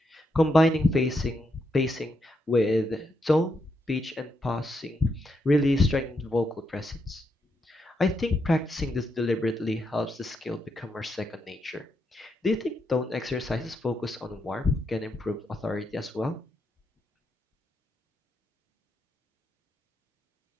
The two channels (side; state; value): both; normal; correlation 0.81